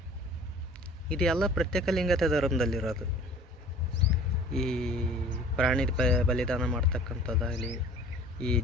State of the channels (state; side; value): normal; both; correlation 0.48